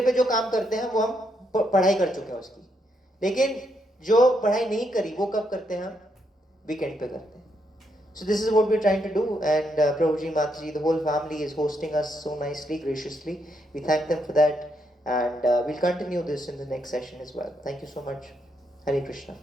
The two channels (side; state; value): both; normal; correlation 0.77